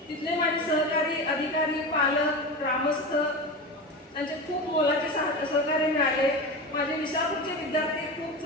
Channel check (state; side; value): normal; both; correlation 0.25